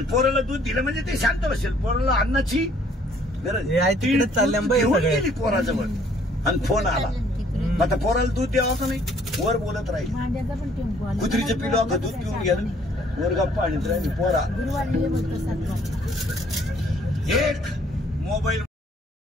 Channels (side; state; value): both; normal; correlation 0.61